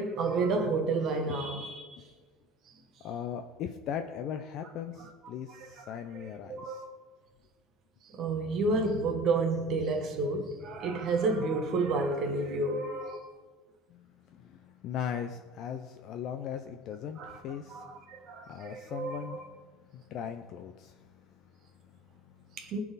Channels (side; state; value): both; normal; correlation 0.40